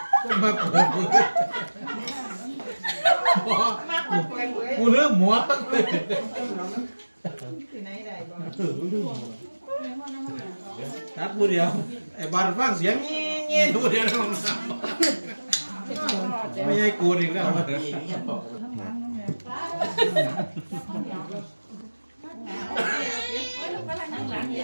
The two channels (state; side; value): inverted; both; correlation -1.00